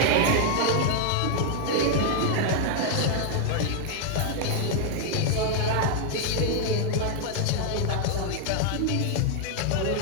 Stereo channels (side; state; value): both; different; correlation 0.00